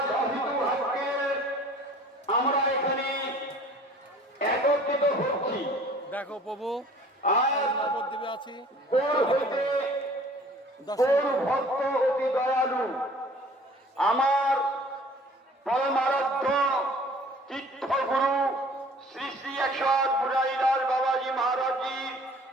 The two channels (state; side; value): normal; both; correlation 0.50